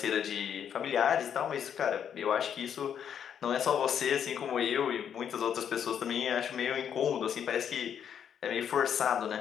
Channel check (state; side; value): quieter; right; 8.5 dB